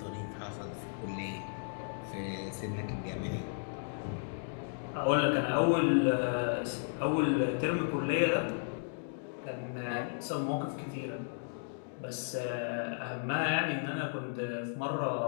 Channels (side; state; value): right; silent; digital silence